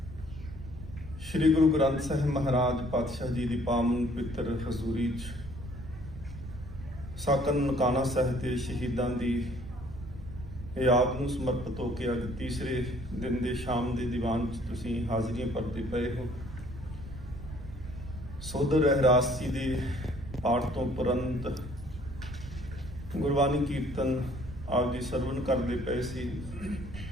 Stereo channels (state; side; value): noise; right; rumble, 12 dB below the sound